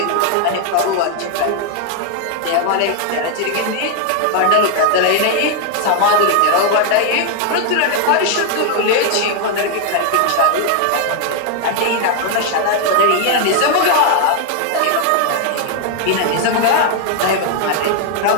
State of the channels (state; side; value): different; both; correlation 0.00